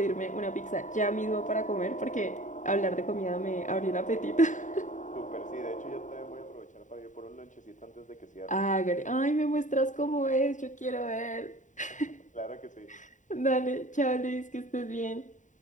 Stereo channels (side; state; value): right; late; 0.36 ms